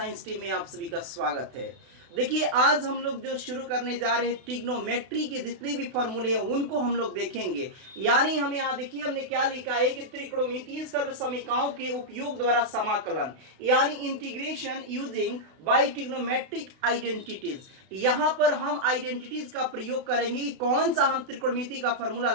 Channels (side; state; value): left; late; 32 ms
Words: टीम में आप सभी का स्वागत है। देखिए, आज हम लोग जो शुरू करने जा रहे हैं, ट्रिग्नोमेट्री के जितने भी फॉर्मूले हैं उनको हम लोग देखेंगे। यानी हम यहाँ देखिए हमने क्या लिखा है कि त्रिकोणमितीय सर्वसमीकरणों के उपयोग द्वारा समाकलन, यानी integration using by trigonometric identities. यहाँ पर हम आइडेंटिटीज का प्रयोग करेंगे कि कौन सा हम त्रिकोणमिति का फॉर्मूला